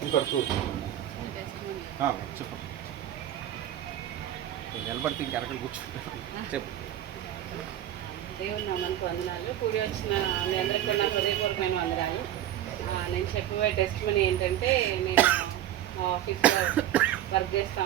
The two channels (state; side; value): quieter; left; 12.1 dB